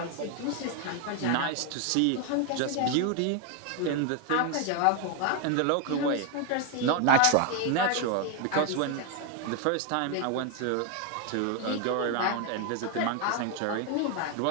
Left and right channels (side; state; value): both; different; correlation 0.01